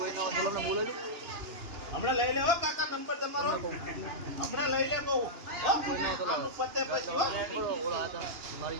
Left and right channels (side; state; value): left; late; 2.9 ms